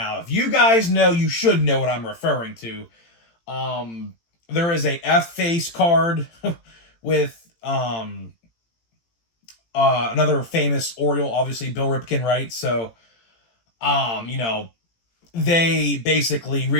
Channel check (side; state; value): right; late; 18 ms